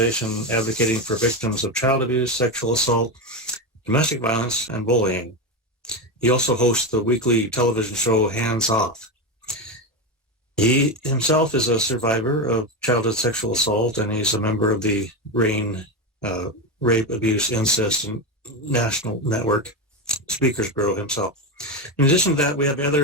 advocating for victims of child abuse, sexual assault, domestic violence, and bullying. He also hosts the weekly television show Hands Off. He himself is a survivor of childhood sexual assault, and he's a member of the RAIN Rape, Abuse, Incest, and National Network Speakers Bureau himself. In addition to that, we have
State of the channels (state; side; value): normal; both; correlation 0.15